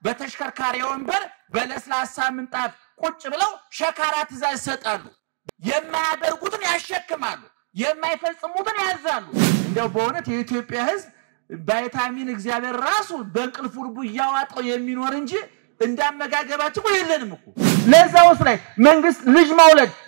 በተሽከርካሪ ወንበር በለስላሳ ምንጣፍ ቁጭ ብለው ሸካራ ትዕዛዝ ይሰጣሉ የማያደርጉትን ያሸክማሉ የማይፈጽሙትን ያዛሉ እንደው በእውነት የኢትዮጵያ ሕዝብ ቫይታሚን እግዚአብሔር ራሱ በእንቅልፉ ልቡ ያዋጣው የሚኖር እንጂ እንዳመጋገባቸው የለንም እኮ ለዛውስ ላይ መንግስት ልጅ መውለድ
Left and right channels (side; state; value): left; silent; digital silence